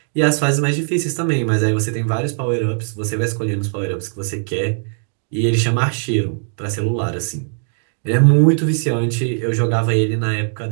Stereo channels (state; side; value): silent; left; 63 dB below the other